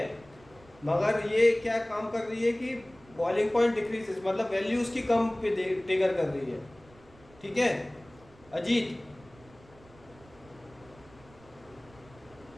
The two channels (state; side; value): noise; right; rumble, 25 dB below the sound